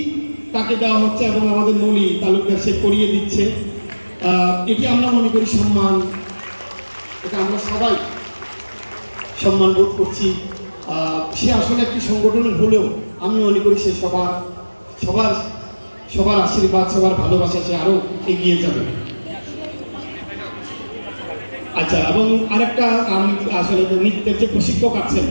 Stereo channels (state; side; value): inverted; both; correlation -1.00